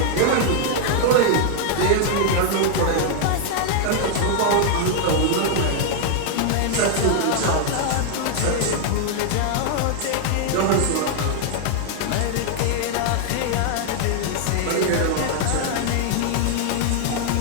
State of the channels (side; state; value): both; different; correlation 0.00